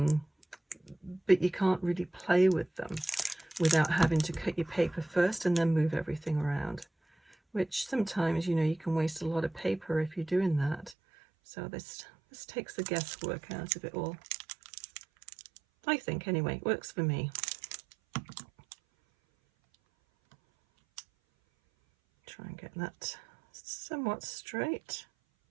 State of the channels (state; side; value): drops out; left; at 11.0 s